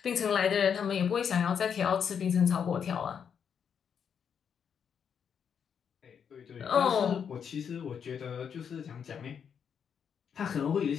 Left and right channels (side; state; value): right; quieter; 7.4 dB